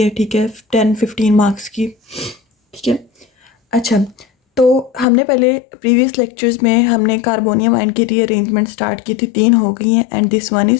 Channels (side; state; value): right; drops out; at 5.1 s